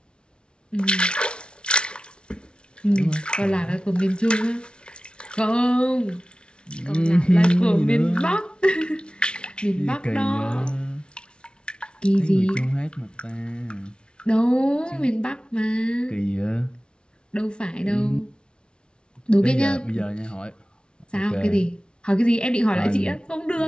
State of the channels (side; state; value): right; late; 0.056 ms